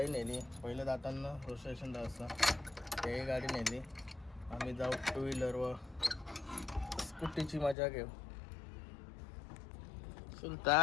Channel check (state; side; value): drops out; right; at 7.8 s